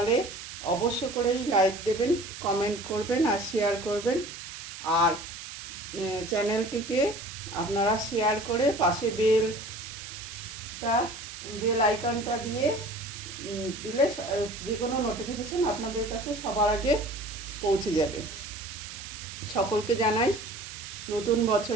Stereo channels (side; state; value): right; noise; hiss, 11 dB below the sound